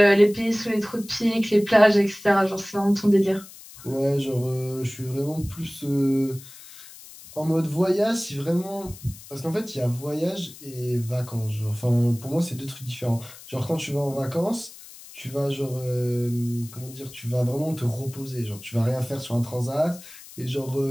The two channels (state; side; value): noise; left; hiss, 18 dB below the sound